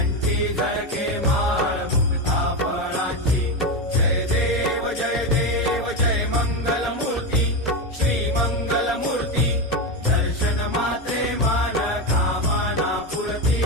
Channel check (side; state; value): both; normal; correlation 0.13